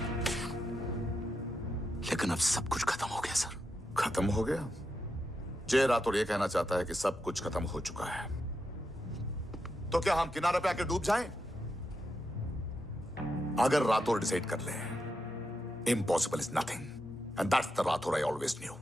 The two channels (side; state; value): both; normal; correlation 0.85